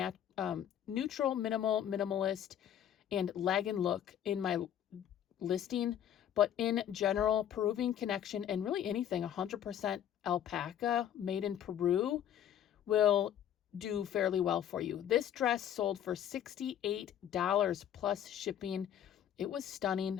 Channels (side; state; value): right; quieter; 10.3 dB